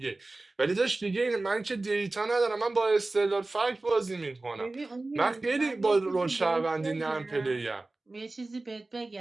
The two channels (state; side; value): quieter; left; 3.1 dB